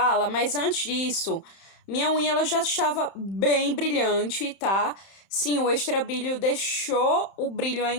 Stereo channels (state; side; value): late; right; 31 ms